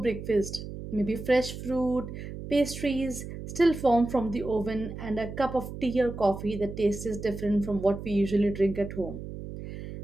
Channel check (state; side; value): noise; right; hum, 9 dB below the sound